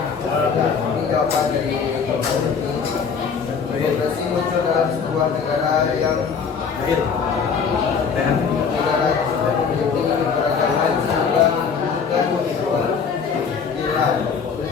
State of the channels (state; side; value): quieter; right; 6.0 dB